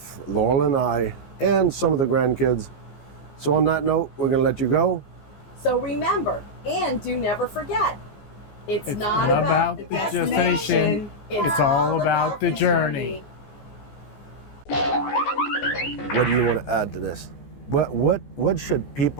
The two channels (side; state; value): right; late; 14 ms